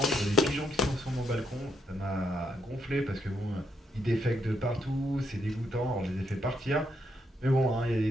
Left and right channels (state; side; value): normal; both; correlation 0.77